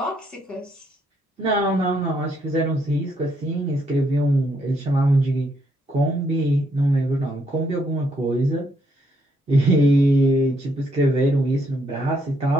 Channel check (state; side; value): normal; both; correlation 0.73